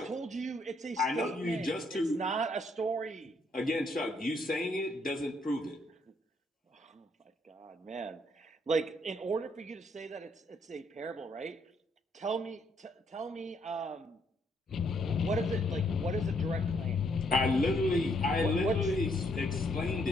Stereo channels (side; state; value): both; normal; correlation 0.71